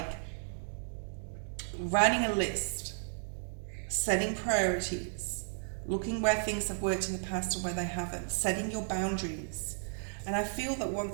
writing a list, setting priorities, looking where things have worked in the past and where they haven't, setting your boundaries. And I feel that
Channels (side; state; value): left; silent; digital silence